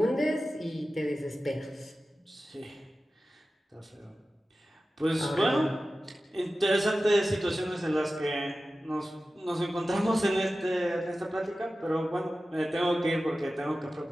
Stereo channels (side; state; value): both; normal; correlation 0.95